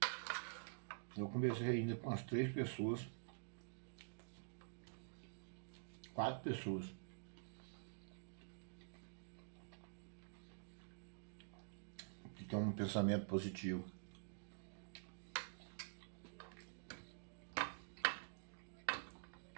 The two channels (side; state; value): left; silent; digital silence